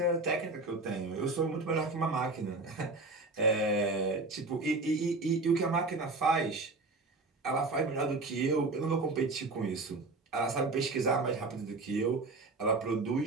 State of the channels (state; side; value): quieter; left; 3.4 dB